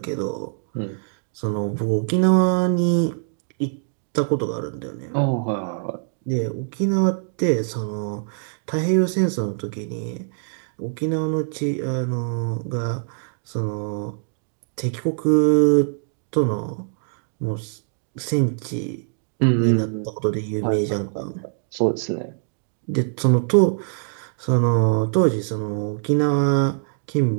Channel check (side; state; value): left; silent; digital silence